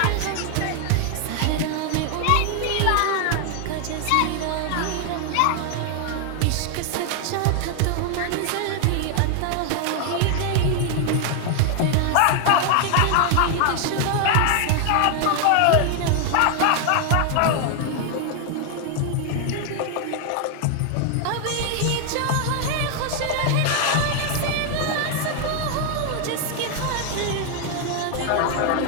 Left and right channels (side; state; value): both; different; correlation 0.00